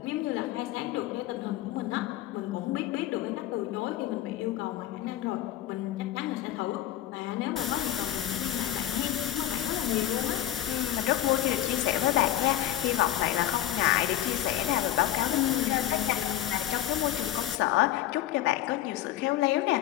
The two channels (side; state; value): right; quieter; 13.0 dB